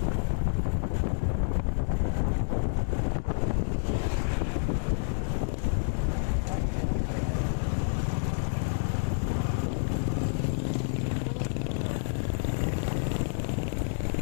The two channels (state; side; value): silent; right; 59 dB below the other